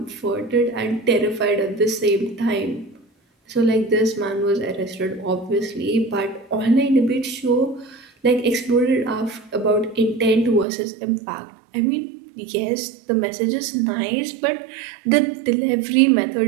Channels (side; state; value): left; drops out; at 10.7 s